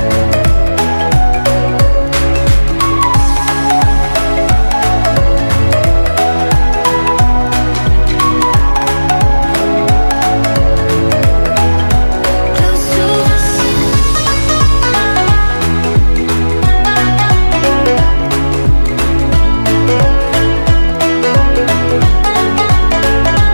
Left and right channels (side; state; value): both; inverted; correlation -1.00